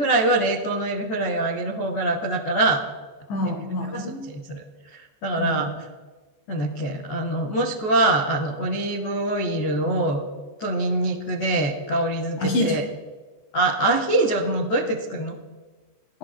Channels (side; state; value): right; late; 14 ms